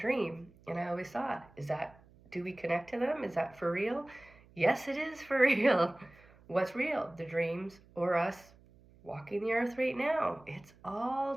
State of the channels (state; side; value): noise; right; hum, 26 dB below the sound